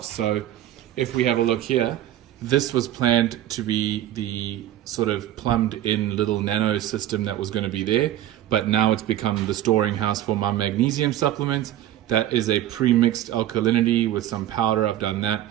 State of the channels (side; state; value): left; quieter; 12.7 dB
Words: So if we have a look here, this was planned to be the sort of plumbed in little nano system that was going to be there, but now it's become the storing house for my magnesium supplement. That is a pre-mixed alkalinity with some powder. I've done that.